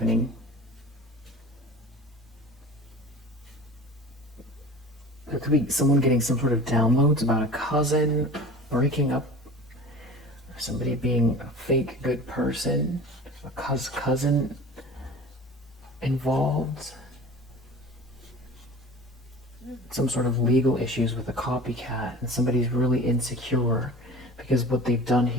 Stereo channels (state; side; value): normal; both; correlation 0.39